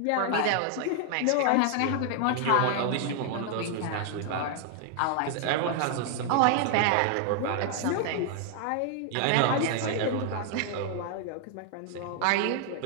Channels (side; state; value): both; different; correlation 0.00